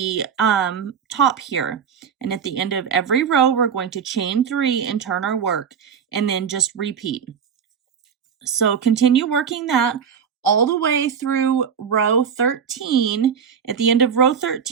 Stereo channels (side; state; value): left; quieter; 7.1 dB